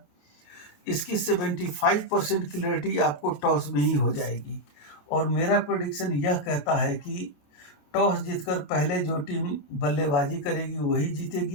इसकी 75% क्लियरिटी आपको टॉस में ही हो जाएगी। और मेरा प्रेडिक्शन यह कहता है कि टॉस जीतकर पहले जो टीम बल्लेबाजी करेगी वही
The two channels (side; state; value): right; late; 28 ms